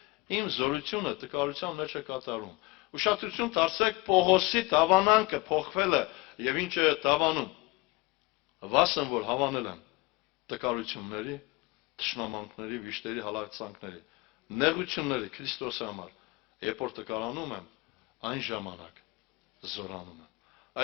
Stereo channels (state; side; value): quieter; right; 23.5 dB